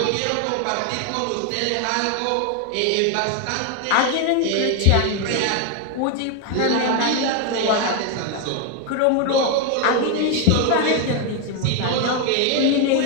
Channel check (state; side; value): different; both; correlation 0.01